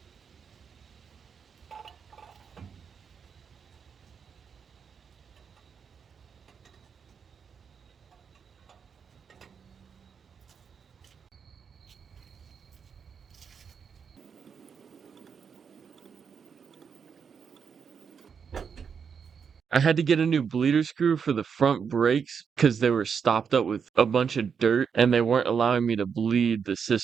I had to get a new bleeder screw for the front brakes because they were stopped up with a bunch of dirt and they weren't allowing me to bleed the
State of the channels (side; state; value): left; quieter; 6.6 dB